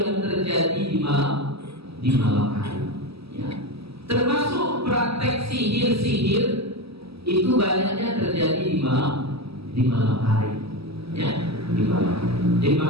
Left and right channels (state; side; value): late; left; 0.77 ms